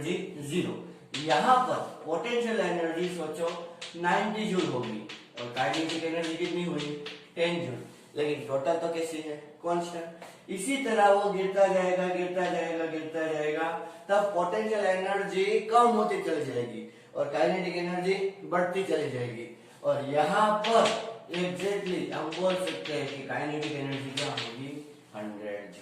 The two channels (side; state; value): both; identical; correlation 1.00